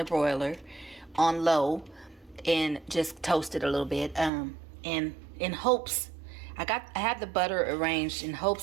broiler on low and just toast it a little bit. And in hopes, I have the butter arranged in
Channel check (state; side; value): drops out; left; at 4.3 s